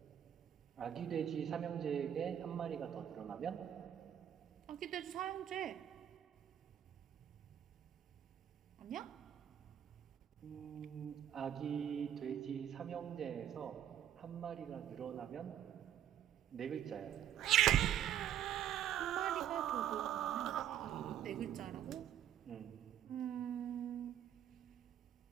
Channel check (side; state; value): left; quieter; 10.4 dB